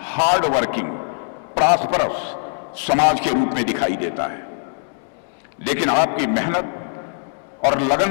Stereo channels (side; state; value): right; silent; 65 dB below the other